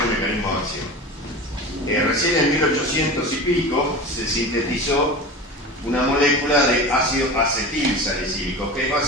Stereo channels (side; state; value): both; normal; correlation 0.31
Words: el mecanismo de acción. Recién en 1800 y pico se sintetizó una molécula de ácido acetilsalicílico, que es